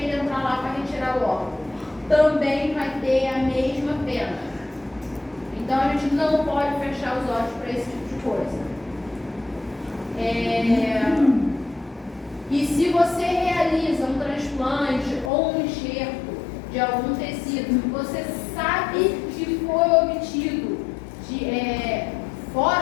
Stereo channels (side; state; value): right; drops out; at 15.3 s